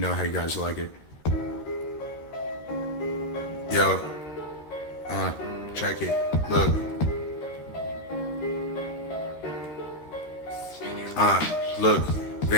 how you guys like it. Yo, check it. Look. Look.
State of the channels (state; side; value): late; right; 13 ms